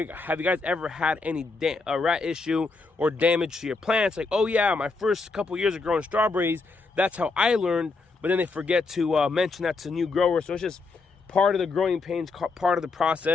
you guys ever had any rat issue or damage to your plants? Like, oh yeah, my first couple years of growing strawberries, that's how I learned. But then they forget to mention that to new growers. So it's just part of the growing pains, part of the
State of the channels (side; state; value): right; quieter; 3.9 dB